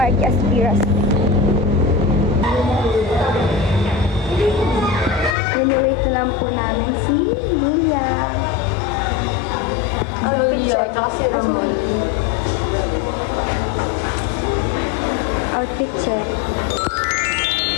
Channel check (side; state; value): right; drops out; at 5.4 s